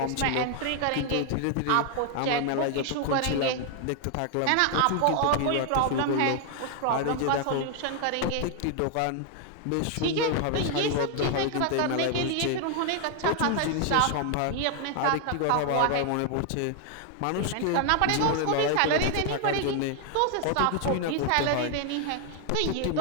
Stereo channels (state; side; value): different; both; correlation 0.00